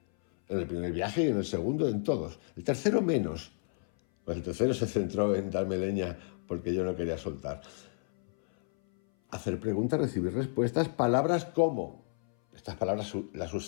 En el primer viaje y en el segundo, en todos. El tercero menos, pues el tercero se centró en darme leña porque yo no quería soltar. Hacer preguntas, recibir respuestas, palabras como, estas palabras las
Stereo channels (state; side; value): silent; right; 57 dB below the other